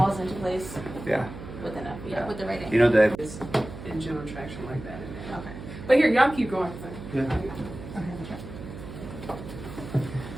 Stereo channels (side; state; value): right; noise; hum, 12 dB below the sound